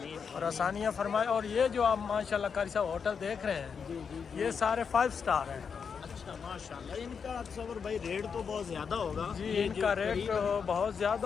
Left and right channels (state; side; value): quieter; right; 6.3 dB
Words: और आसानियाँ फरमाए। और ये जो आप माशाल्लाह कारी साहब होटल देख रहे हैं, जी, ये सारे 5 स्टार हैं। अच्छा, माशाल्लाह। इनका तसव्वुर भाई रेट तो बहुत ज़्यादा होगा। जी, इनका रेट बहुत